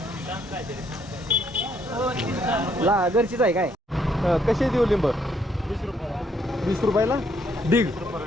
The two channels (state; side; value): normal; both; correlation 0.70